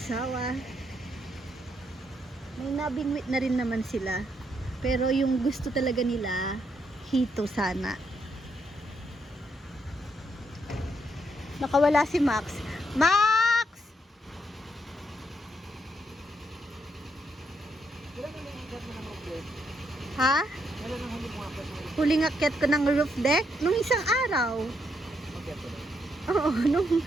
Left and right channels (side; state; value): both; normal; correlation 0.77